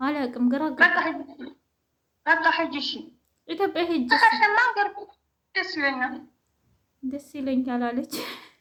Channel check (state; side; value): identical; both; correlation 1.00